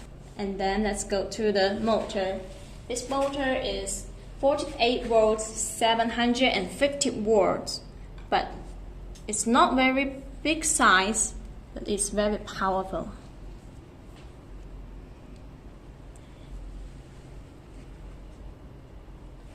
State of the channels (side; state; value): both; identical; correlation 1.00